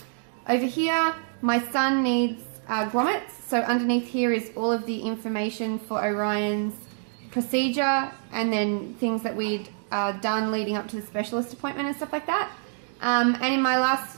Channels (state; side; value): silent; left; 61 dB below the other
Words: Over here, my son needs grommets, so underneath here is all of the information for Orion's procedure and then things that we'd done leading up to the specialist appointment and stuff like that. And in my last